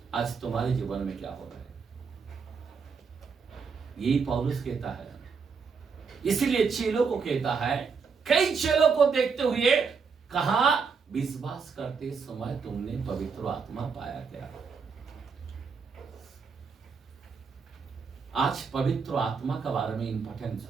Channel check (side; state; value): left; quieter; 5.5 dB